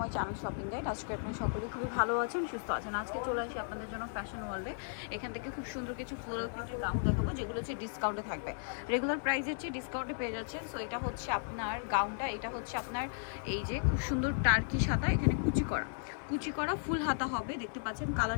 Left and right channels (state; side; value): silent; right; digital silence